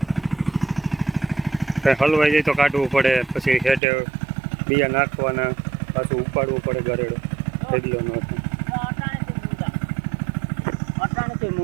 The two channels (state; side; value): drops out; left; at 3.8 s